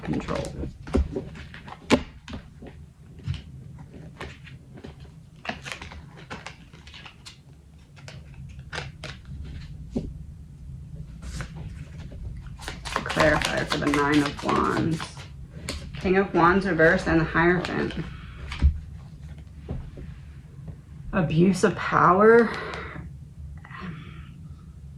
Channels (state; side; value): identical; both; correlation 1.00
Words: control. Clarifier for the 9 of Wands. King of Wands reversed and the Hierophant. Abuse of power.